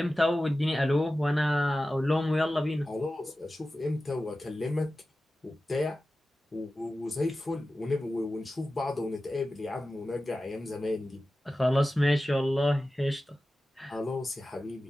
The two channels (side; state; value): both; normal; correlation 0.94